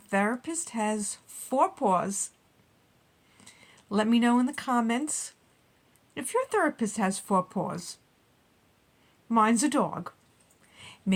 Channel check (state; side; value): identical; both; correlation 1.00